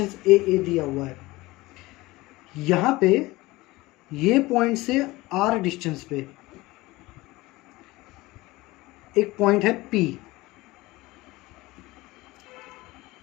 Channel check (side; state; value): right; quieter; 20.3 dB